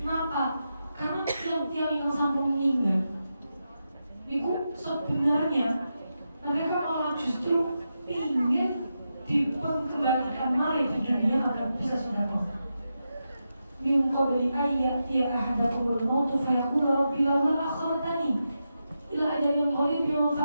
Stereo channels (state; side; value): inverted; both; correlation -0.88